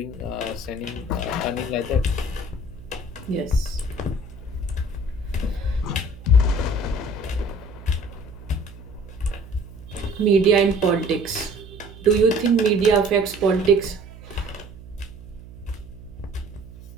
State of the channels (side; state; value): right; noise; hum, 17 dB below the sound